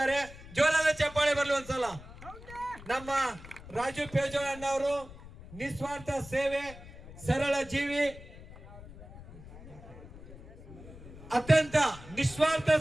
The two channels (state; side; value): noise; left; rumble, 16 dB below the sound